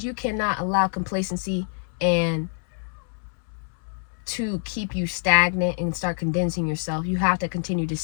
you cannot allow complacency and to keep you stagnant and start condensing yourself. You have to continue to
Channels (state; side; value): silent; right; 61 dB below the other